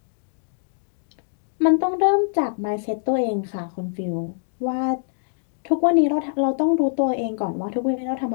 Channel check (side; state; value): right; silent; digital silence